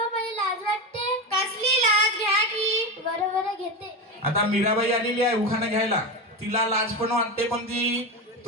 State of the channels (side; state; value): both; normal; correlation 0.19